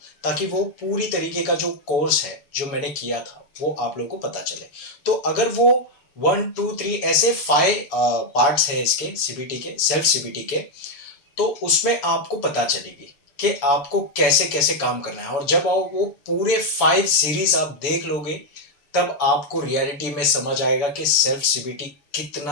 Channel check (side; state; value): right; late; 7.0 ms